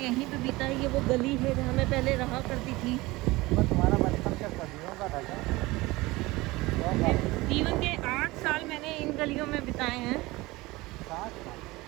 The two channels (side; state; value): left; quieter; 20.9 dB